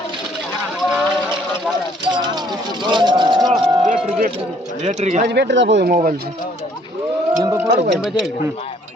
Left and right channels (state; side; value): normal; both; correlation 0.62